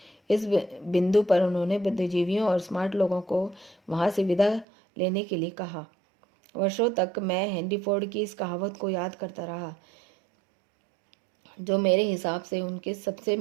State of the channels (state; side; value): drops out; left; at 4.7 s